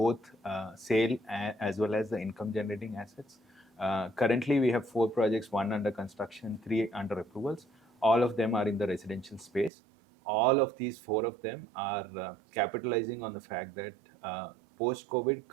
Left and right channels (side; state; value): left; drops out; at 9.7 s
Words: sale as well as the income generating assets. Currently, we have 4 projects, 1 under construction, 3 under approvals. All of them are in the residential space. All of these 4 of them are capitalizing on the fact that post-COVID